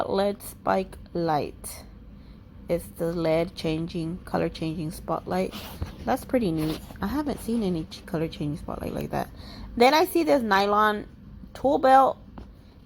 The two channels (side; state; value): both; identical; correlation 1.00